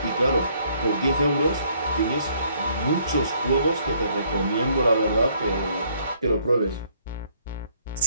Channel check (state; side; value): inverted; both; correlation -0.66